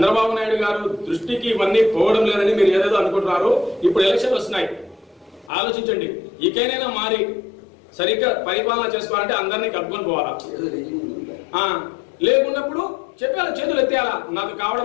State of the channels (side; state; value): right; drops out; at 5.5 s